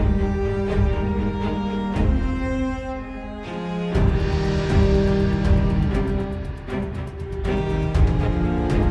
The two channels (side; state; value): both; identical; correlation 1.00